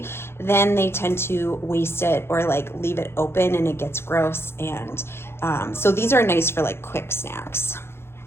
then they tend to waste it or like leave it open and it gets gross. And so these are nice for like quick snacks.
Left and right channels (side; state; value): right; late; 0.12 ms